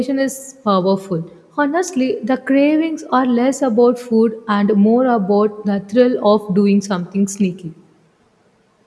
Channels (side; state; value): both; identical; correlation 1.00